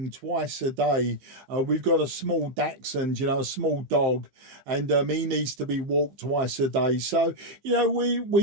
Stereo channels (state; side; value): late; left; 15 ms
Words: twice a day. We've got a small dachshund, you know, a small dog, and he needs to be walked twice a day. So, you know,